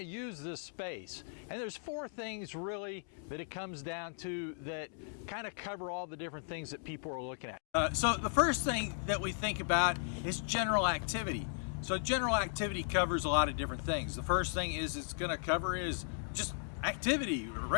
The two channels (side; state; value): right; silent; digital silence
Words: use this space. And there's four things really that it comes down to that kind of cover all the different things that people are looking at. So the first thing that we think about is general activity. So general activity covers a lot of different things. The first thing it's going to cover is just activity,